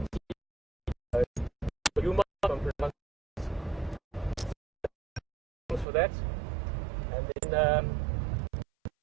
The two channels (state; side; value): drops out; left; at 5.9 s